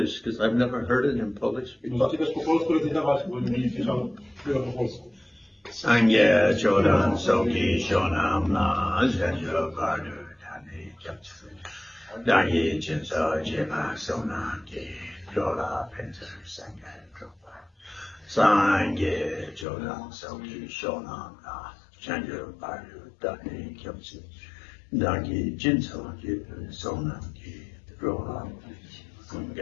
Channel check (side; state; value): right; drops out; at 19.7 s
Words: because I've never heard it in Polish before. Możecie też po polsku recytować, bo nie słyszał tego po polsku. Sangye Chodan Soki Shonam Na Zhenjo Bardu Tani Japsu Dangye Jinso Jima Sonam Ki Jola Penser Sangye Dropa Sangye Chodan Soki Shonam Na Zhenjo Bardu Tani Japsu Dangye Jinso Jima Sonam Ki Jola